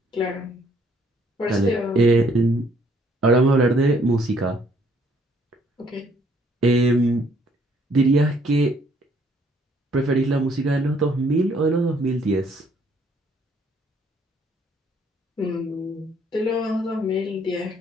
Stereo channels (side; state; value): both; normal; correlation 0.64